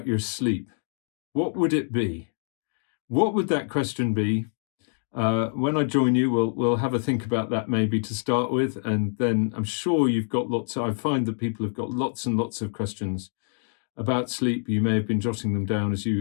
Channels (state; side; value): silent; right; digital silence